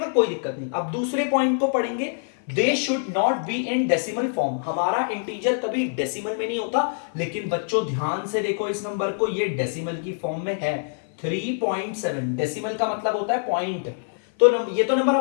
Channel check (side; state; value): right; silent; 56 dB below the other